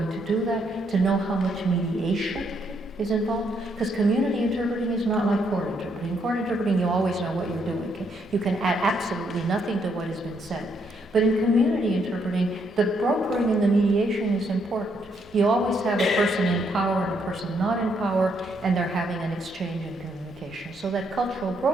to do that, to know how much mediation is involved. Because community interpreting is not like court interpreting. In court interpreting, you always know what you're doing. Okay? You can add absolutely nothing to what has been said. But in community interpreting, the brokering and the mediation is important. You always have a person in power and a person not in power, and they're having an exchange in communication. So that cultural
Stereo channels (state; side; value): normal; both; correlation 0.74